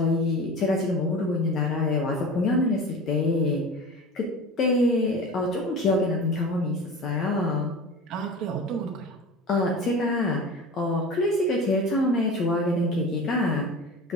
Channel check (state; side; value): normal; both; correlation 0.34